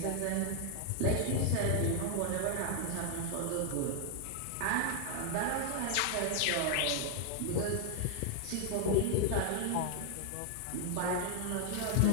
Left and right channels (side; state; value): both; different; correlation 0.00